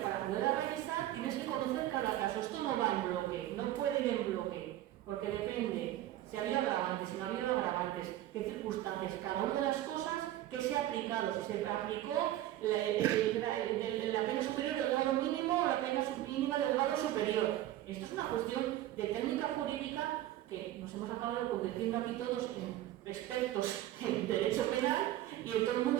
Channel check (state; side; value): quieter; left; 14.0 dB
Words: poder revisar, tienes que conocer cada caso. Esto no va en bloque, no puede ir en bloque, porque depende si ha habido agravantes, si no ha habido agravantes, qué circunstancias, cada una de las cosas que se ha aplicado, si se aplicó la pena superior del grado mínimo o la pena mínima del grado superior. Esto es una cuestión de técnica jurídica que nos hemos acabado convirtiendo aquí todos en expertos en derecho penal y todo el mundo